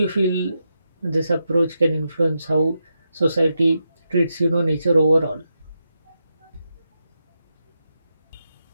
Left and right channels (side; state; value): both; inverted; correlation -0.86